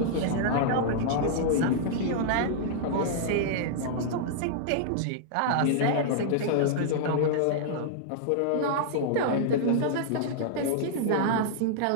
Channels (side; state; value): both; different; correlation -0.01